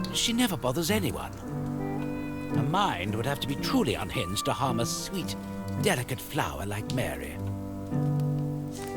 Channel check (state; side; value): identical; both; correlation 1.00